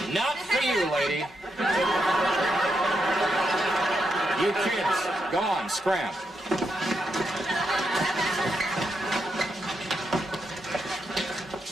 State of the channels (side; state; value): both; normal; correlation 0.82